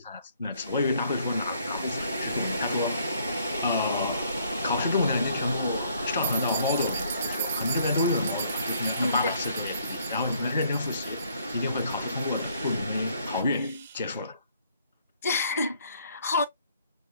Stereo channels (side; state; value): both; inverted; correlation -0.66